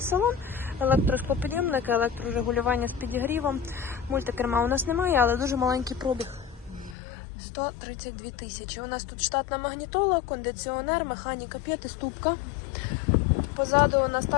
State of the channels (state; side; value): drops out; right; at 7.0 s